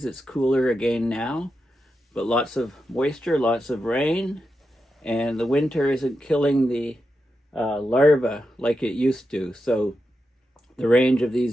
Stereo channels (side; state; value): both; normal; correlation 0.88